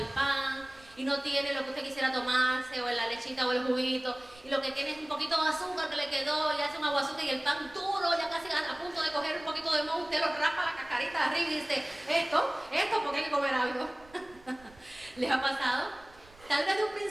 pan, y no tiene lo que usted quisiera tomarse, o la lechita o el juguito, y lo que tiene es un poquito de azúcar que le quedó, y hace un aguacate y el pan duro, ya casi a punto de coger un poquito de moho, usted lo raspa la cascarita de arriba y dice, esto porque hay que comer algo. ¿Les ha pasado? Tal vez de un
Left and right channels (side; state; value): right; noise; rumble, 25 dB below the sound